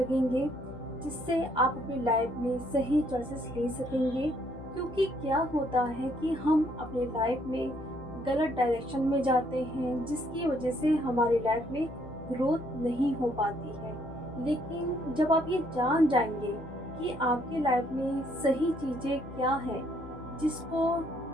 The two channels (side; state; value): left; noise; hum, 15 dB below the sound